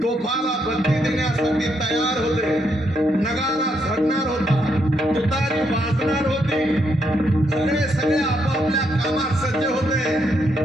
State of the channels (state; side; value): normal; both; correlation 0.77